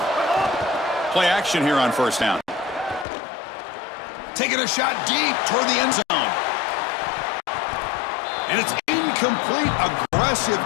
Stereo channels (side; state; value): right; drops out; at 3.1 s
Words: Play action here on first down. Taking a shot deep toward the end zone. And it's incomplete. Aggressive